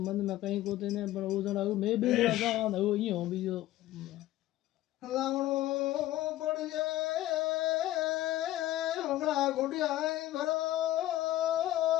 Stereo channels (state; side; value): quieter; right; 15.0 dB